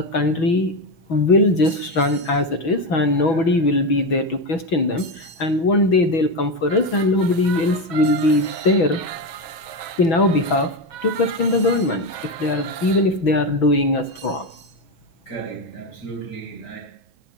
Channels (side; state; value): right; late; 6.1 ms